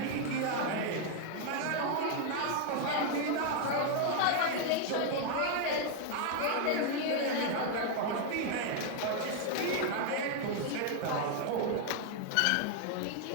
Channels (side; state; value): both; different; correlation 0.00